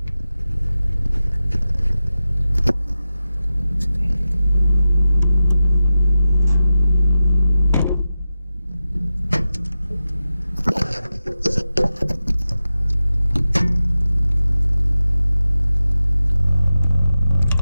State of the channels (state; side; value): inverted; both; correlation -0.93